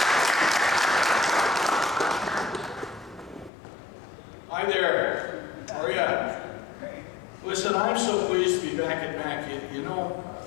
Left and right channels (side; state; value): right; drops out; at 3.5 s